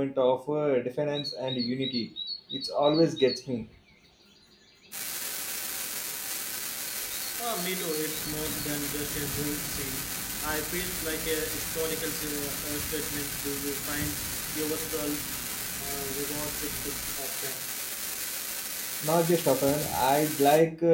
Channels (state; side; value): identical; both; correlation 1.00